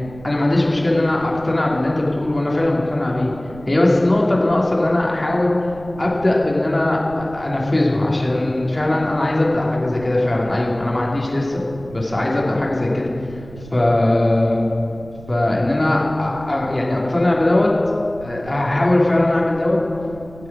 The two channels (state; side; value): noise; right; rumble, 17 dB below the sound